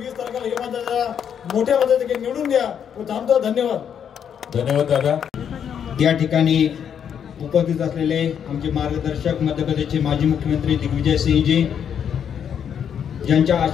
तारखेला हे माझ्या मोठ्या पद्धतीने निवडून द्या व थांबतो। धन्यवाद। धन्यवाद दादा। या ठिकाणी उपस्थित असलेले आमचे मार्गदर्शक मध्य प्रदेशचे माजी मुख्यमंत्री दिग्विजय सिंहजी, ज्यांच्या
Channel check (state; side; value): quieter; right; 8.3 dB